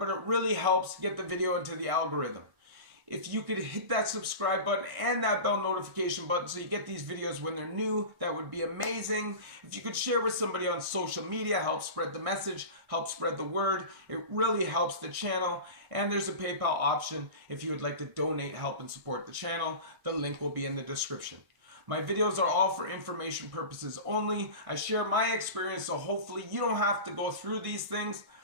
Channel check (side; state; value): left; late; 1.6 ms